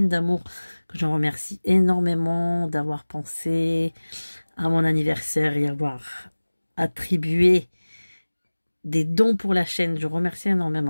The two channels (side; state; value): both; inverted; correlation -1.00